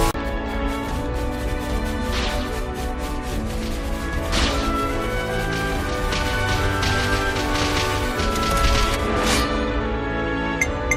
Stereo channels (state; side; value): identical; both; correlation 1.00